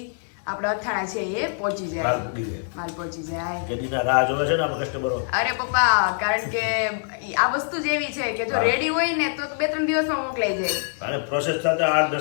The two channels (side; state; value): right; silent; digital silence